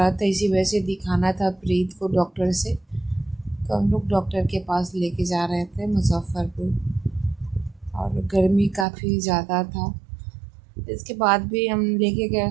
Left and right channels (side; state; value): left; drops out; at 8.8 s